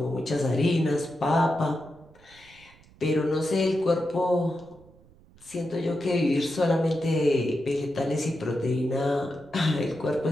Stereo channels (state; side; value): noise; right; rumble, 26 dB below the sound